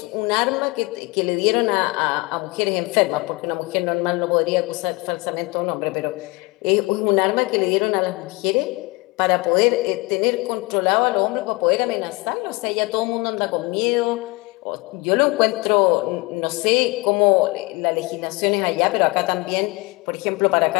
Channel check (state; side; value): quieter; right; 24.8 dB